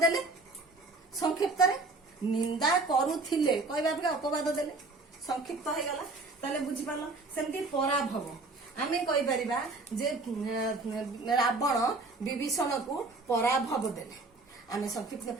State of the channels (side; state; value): left; quieter; 3.4 dB